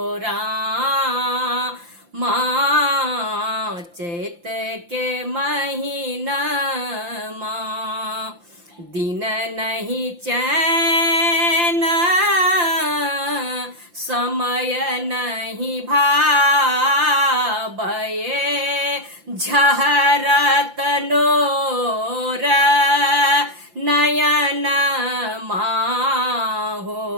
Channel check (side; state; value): left; late; 5.8 ms